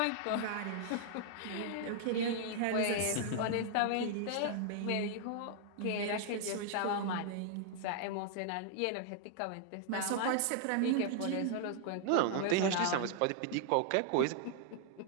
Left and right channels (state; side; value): different; both; correlation 0.00